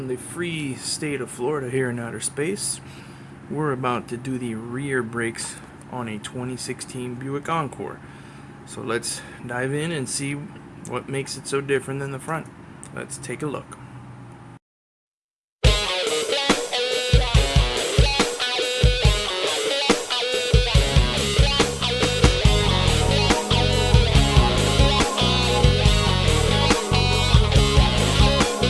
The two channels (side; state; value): both; identical; correlation 1.00